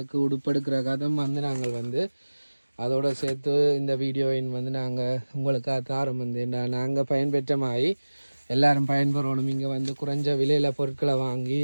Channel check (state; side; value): inverted; both; correlation -1.00